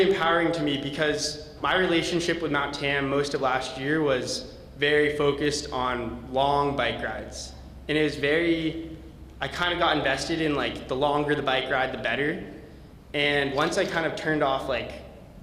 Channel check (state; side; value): identical; both; correlation 1.00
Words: empowering to me, because my relationship with Mount Tam most of last year was very focused on long bike rides. And it was I kind of got invested in like the longer the bike ride, the better. And once I kind of turned off like